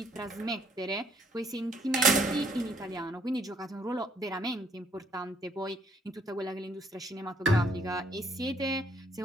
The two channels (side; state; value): both; normal; correlation 0.66